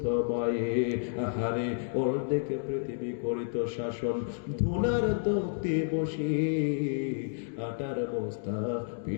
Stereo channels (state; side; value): silent; right; digital silence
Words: মায়ে। আহারে ওর দেখে পৃথিবী করিত শাসন, ধুনার তক্তে বসে আটার বস্তা